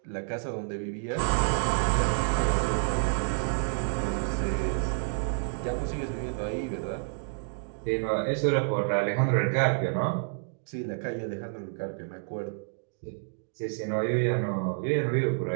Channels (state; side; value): silent; left; digital silence